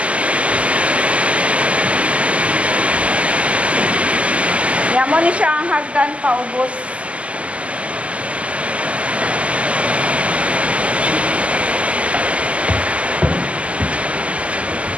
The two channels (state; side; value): late; left; 0.062 ms